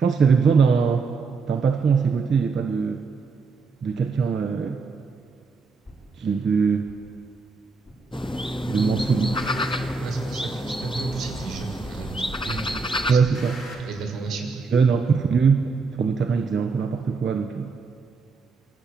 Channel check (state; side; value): quieter; left; 4.7 dB